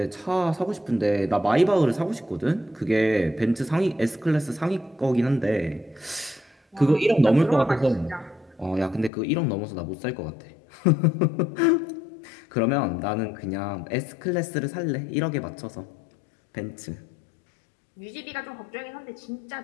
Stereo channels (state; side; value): drops out; right; at 9.1 s